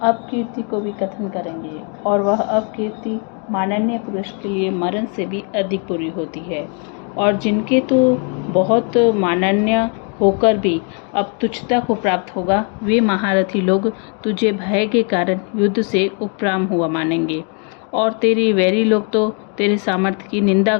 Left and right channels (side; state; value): right; quieter; 39.8 dB